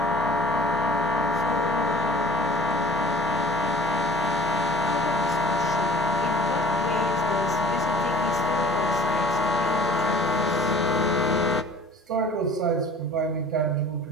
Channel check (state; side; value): normal; both; correlation 0.47